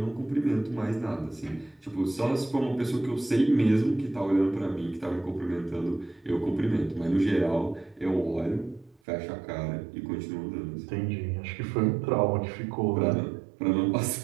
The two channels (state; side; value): drops out; left; at 9.0 s